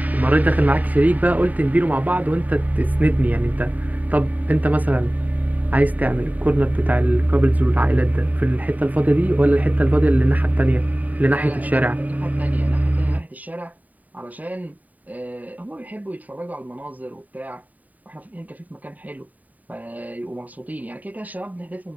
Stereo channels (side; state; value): left; late; 0.076 ms